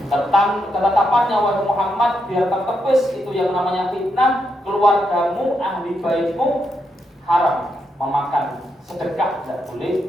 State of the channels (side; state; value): both; normal; correlation 0.81